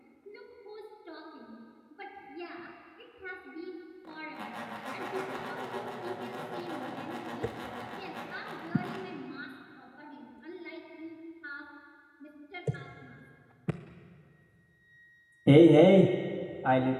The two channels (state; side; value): identical; both; correlation 1.00